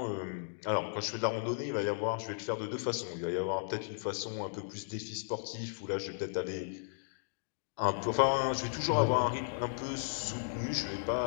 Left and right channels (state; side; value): silent; right; digital silence